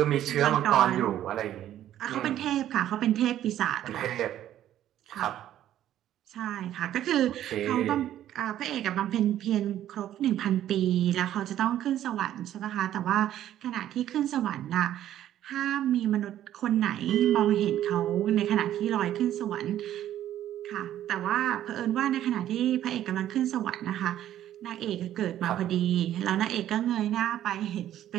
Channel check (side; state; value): left; quieter; 12.0 dB